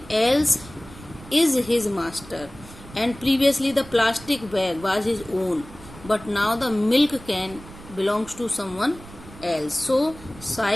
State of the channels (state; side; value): noise; right; rumble, 18 dB below the sound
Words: else is his master. And previously the plastic bag was his own, but now the milk can belongs to someone else. So